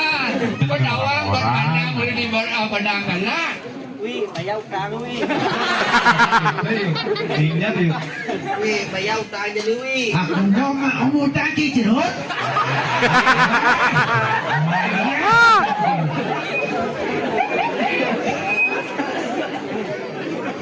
pedawang berkandang boleh berpandangan. Wi, bayaw tang Wi. Tinggal dia. Wi, bayaw tang jadi Wi. Aku mau umutang kicirot.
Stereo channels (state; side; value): identical; both; correlation 1.00